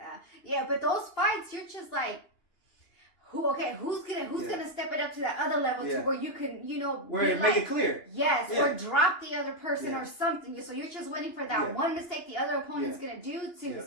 Yeah, but those fights, you're just like, who's gonna step it up to that other level to where you can, you know, where make it clear. Yes, or drop the other person or something. So you're just waiting for that one mistake the other opponent's gonna do to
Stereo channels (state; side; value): late; right; 2.8 ms